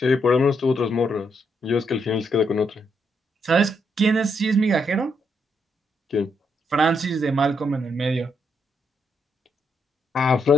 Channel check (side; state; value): both; normal; correlation 0.77